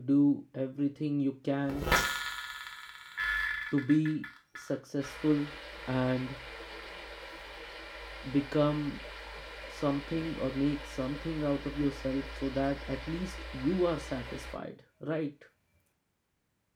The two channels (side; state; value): both; identical; correlation 1.00